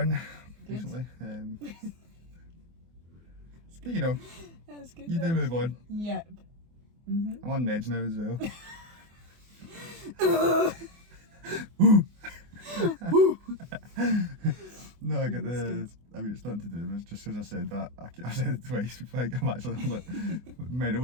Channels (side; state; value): left; late; 24 ms